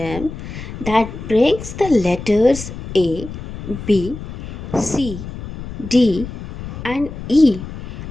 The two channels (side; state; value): left; noise; rumble, 10 dB below the sound